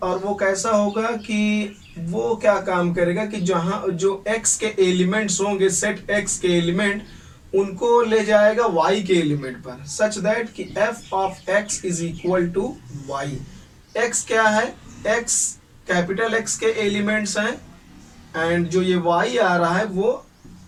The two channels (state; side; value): identical; both; correlation 1.00